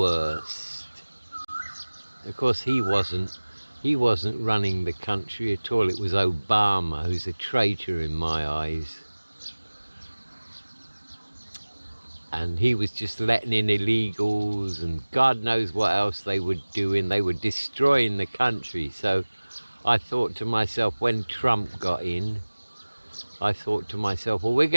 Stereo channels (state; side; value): inverted; both; correlation -1.00